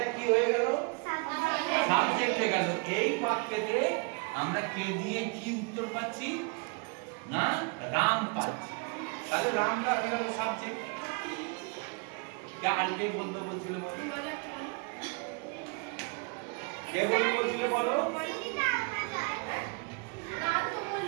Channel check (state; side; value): quieter; left; 33.0 dB